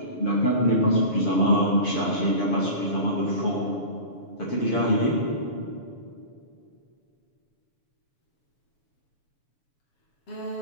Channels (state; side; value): late; right; 7.1 ms